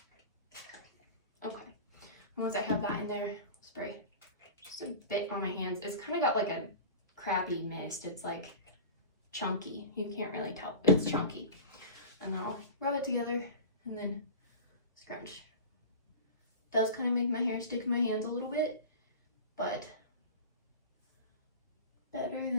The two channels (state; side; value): inverted; both; correlation -0.33